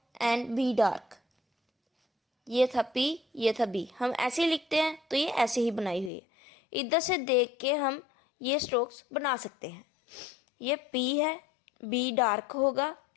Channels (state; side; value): drops out; right; at 6.1 s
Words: एंड बी डार्क। ये था पी, ये था बी, हम ऐसे ही लिखते हैं, तो ये ऐसे ही बनाई हुई है। इधर से देख के हम ये स्ट्रोक्स बना सकते हैं। ये पी है, बी डार्क होगा,